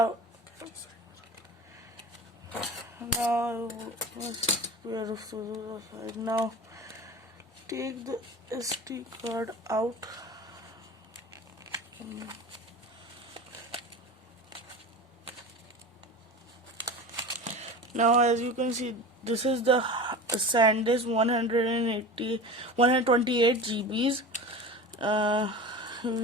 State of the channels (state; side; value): normal; both; correlation 0.32